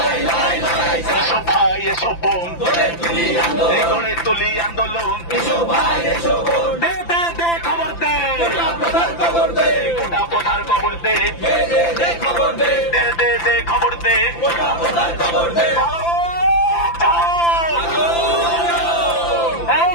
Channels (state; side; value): late; right; 5.9 ms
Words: এসব ভাই এসব বোন গড়ে তুলি আন্দোলন দে দে দে খবর দে গোটা প্রধার খবর দে দে দে দে খবর দে এই